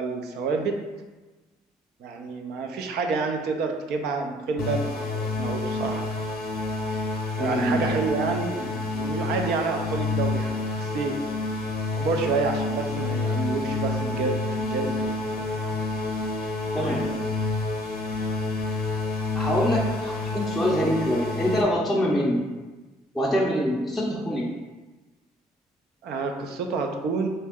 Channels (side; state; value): both; normal; correlation 0.56